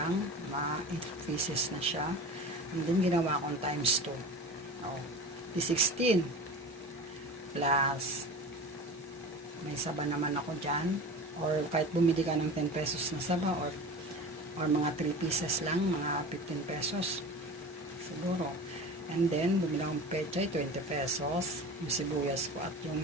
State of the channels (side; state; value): both; normal; correlation 0.34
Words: 8 pieces na siya. And then, ginawa kong times 2. Oh, di 16. Plus, may saba naman ako dyan. Or kahit bumili ka ng 10 pesos na saba or mga 3 pieces lang, mga 15 pesos siguro. And then bumili akong pechay, 20 pesos yung sibuyas ko, at